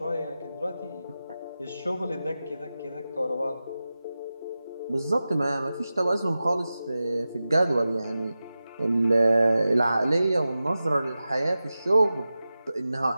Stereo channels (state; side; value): inverted; both; correlation -0.94